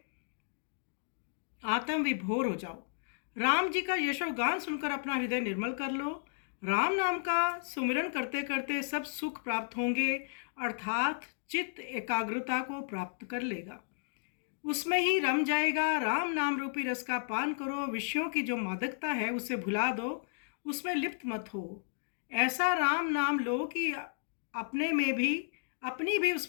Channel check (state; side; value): silent; right; digital silence